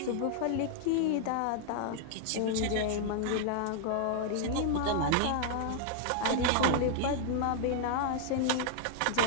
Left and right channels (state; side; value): different; both; correlation 0.00